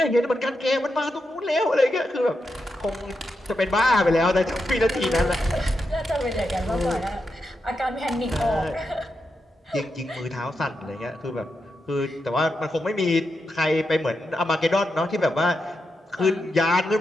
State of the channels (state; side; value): normal; both; correlation 0.86